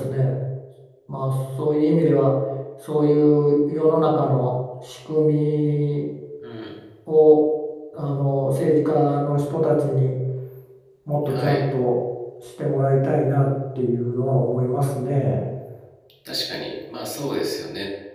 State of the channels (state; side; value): identical; both; correlation 1.00